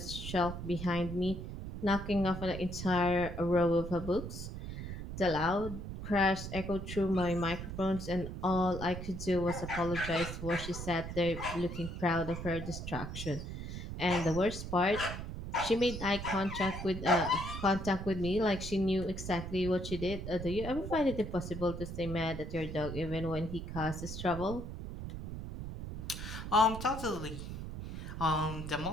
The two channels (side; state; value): right; noise; rumble, 7 dB below the sound